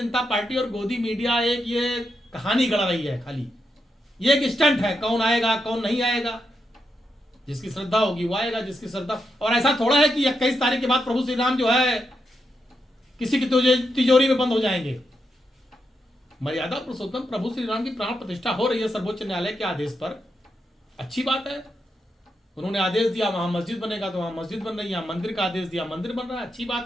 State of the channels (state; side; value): normal; both; correlation 0.84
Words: जनता पार्टी और गोदी मीडिया एक ये कहानी गढ़ रही है खाली। ये एक स्टंट है, कौन आएगा कौन नहीं आएगा, जिसकी श्रद्धा होगी वो आएगा, जिसकी श्रद्धा। और ऐसा थोड़ा है कि 21 तारीख के बाद प्रभु श्री राम जो है किसी की तिजोरी में बंद हो जाएंगे। मर्यादा पुरुषोत्तम प्रभु श्री राम की प्राण प्रतिष्ठा हो रही है सर्वोच्च न्यायालय के आदेश पर, अच्छी बात है। उन्होंने आदेश दिया वहां मस्जिद बनेगा तो वहां मस्जिद बन रही है, मंदिर का आदेश दिया मंदिर बन रहा है, अच्छी बात